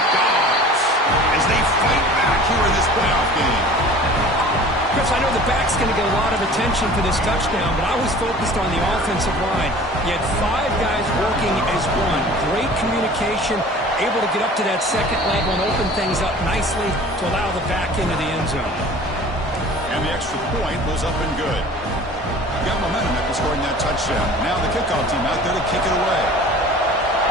Dogs, as they fight back here in this playoff game. Chris, I know the back's going to get a lot of attention for this touchdown, but I was focused on the offensive line. You had 5 guys working as one. Great communication, able to get up to that second level and open things up nicely to allow the back into the end zone. And the extra point was up and good. Got momentum after scoring that touchdown. Now the kickoff team out there to kick it away.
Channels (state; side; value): normal; both; correlation 0.44